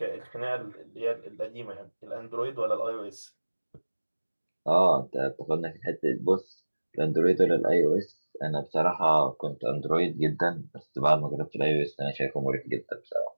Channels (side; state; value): both; inverted; correlation -1.00